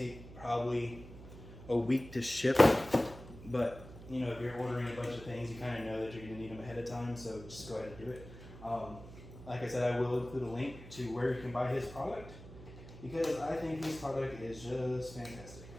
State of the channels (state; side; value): noise; right; hum, 15 dB below the sound